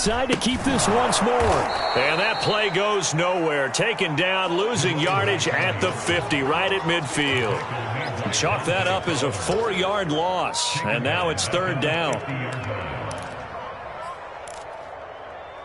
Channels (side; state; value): both; identical; correlation 1.00